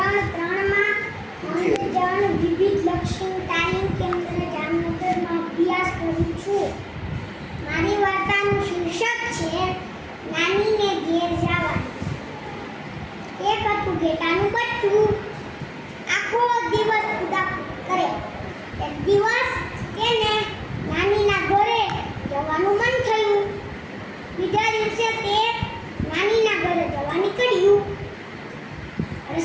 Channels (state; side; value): identical; both; correlation 1.00